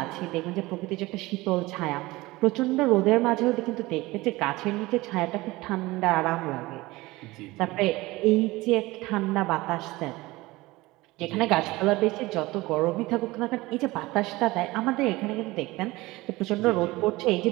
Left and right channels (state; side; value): quieter; left; 20.3 dB